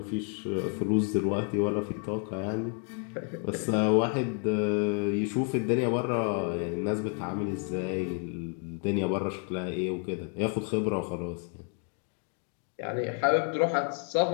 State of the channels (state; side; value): quieter; right; 40.0 dB